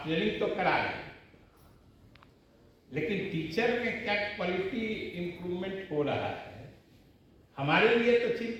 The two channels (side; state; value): both; identical; correlation 1.00